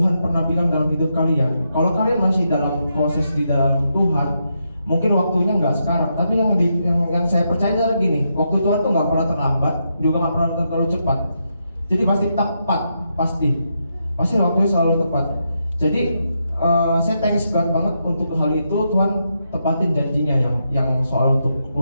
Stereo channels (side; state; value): both; inverted; correlation -0.82